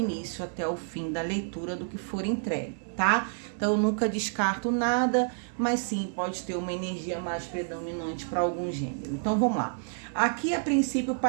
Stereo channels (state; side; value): silent; left; 58 dB below the other